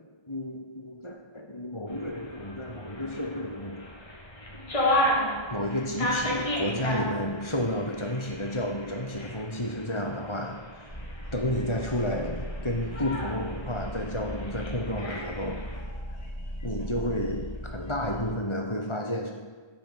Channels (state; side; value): late; right; 1.4 ms